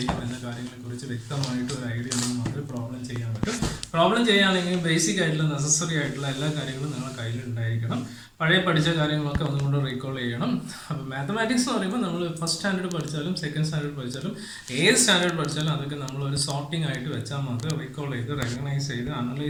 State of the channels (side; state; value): both; identical; correlation 1.00